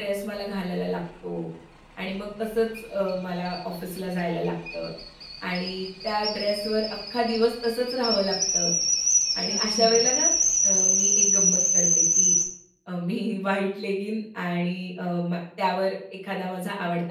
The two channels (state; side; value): identical; both; correlation 1.00